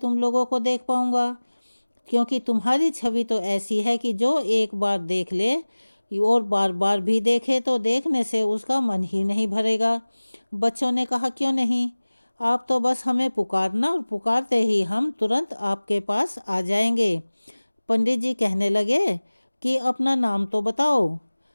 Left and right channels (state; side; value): inverted; both; correlation -1.00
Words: लोगों को देख पाऊंगा? क्योंकि तुम्हारी छवि तो ऐसी है कि जो एक बार देख ले और बार बार भी देखे तो देखने से उसका मन ही नहीं भरेगा। बच्चों ने कहा, क्यों नहीं? आप तो बस हमें पुकारना और पुकारते ही हम तुरंत आपके पास आ जाएंगे। पंडित जी कहने लगे कि अपना नाम तो बताओ।